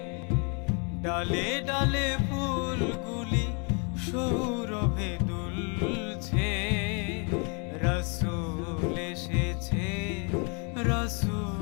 ডালে ডালে ফুলগুলি সৌরভে দুলছে। রাসূল এসেছে,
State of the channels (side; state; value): right; quieter; 35.6 dB